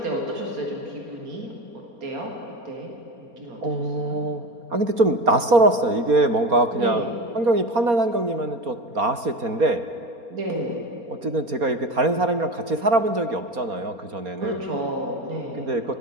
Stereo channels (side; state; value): left; late; 4.3 ms